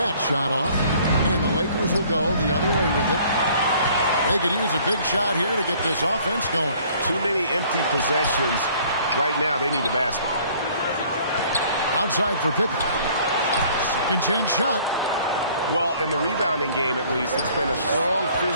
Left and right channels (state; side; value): inverted; both; correlation -0.56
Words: shot off. And the Lakers will go the other way with it. They could use a big shot here to get this offense going. Too many empty possessions. Right now, they need a basket. Outside for Pippen. Second chance shot. Well, in the rebounding game, at least, it's been a strong